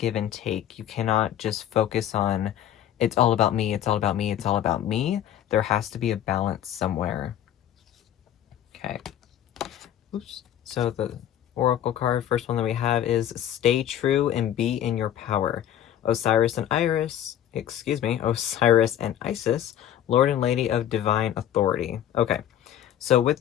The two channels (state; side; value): quieter; right; 11.0 dB